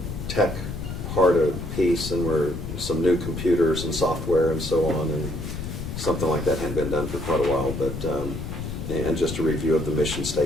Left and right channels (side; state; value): left; noise; rumble, 7 dB below the sound